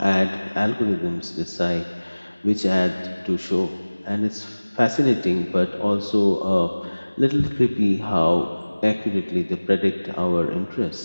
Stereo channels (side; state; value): both; inverted; correlation -1.00